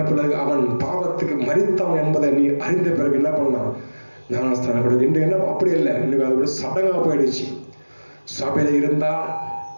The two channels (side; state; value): both; inverted; correlation -1.00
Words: பிறகு, அவன் பாவத்துக்கு மரித்தான் என்பதை நீ அறிந்த பிறகு என்ன பண்ணலாம்? ஞானஸ்தானம் கொடுக்க. இன்று என்ன அப்படி இல்லை, இன்னைக்கு அது ஒரு சடங்காக போயிடுச்சு. சபையில இருந்தால்